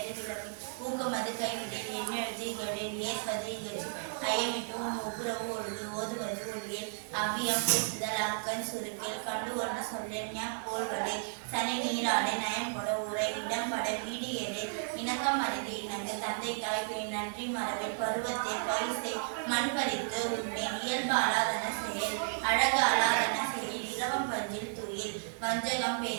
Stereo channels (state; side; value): silent; left; digital silence